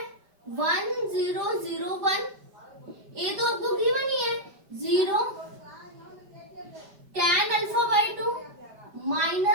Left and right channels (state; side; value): late; left; 5.1 ms